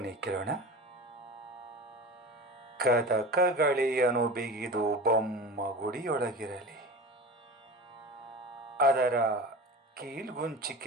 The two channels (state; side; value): normal; both; correlation 0.32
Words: ಕೇಳೋಣ. ಕದಕಗಳಿಯನು ಬಿಗಿದು ಬೊಮ್ಮ ಗುಡಿಯೊಳಗಿರಲಿ, ಅದರ